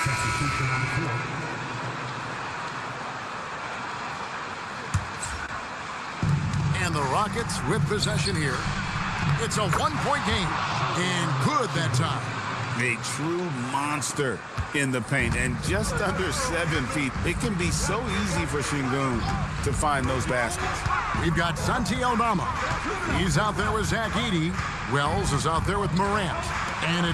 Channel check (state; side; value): identical; both; correlation 1.00